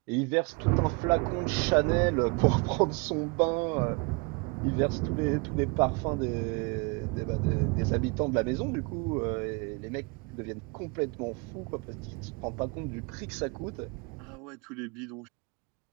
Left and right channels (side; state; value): left; quieter; 30.1 dB